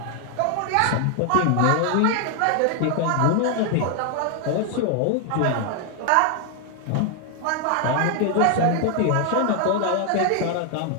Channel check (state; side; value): different; both; correlation 0.00